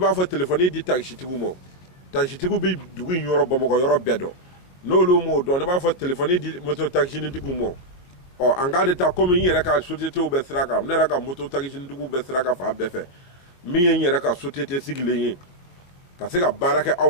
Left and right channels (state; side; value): late; right; 22 ms